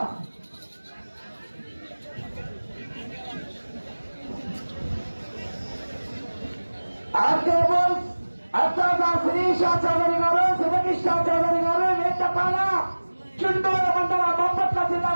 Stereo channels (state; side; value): inverted; both; correlation -1.00